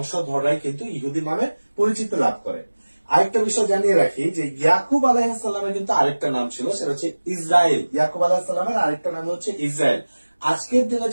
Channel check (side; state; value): both; inverted; correlation -1.00